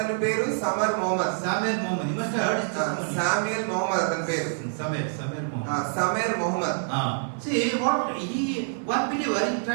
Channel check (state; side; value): silent; left; digital silence